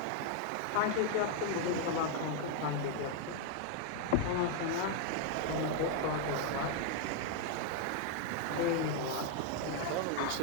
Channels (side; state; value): both; different; correlation 0.00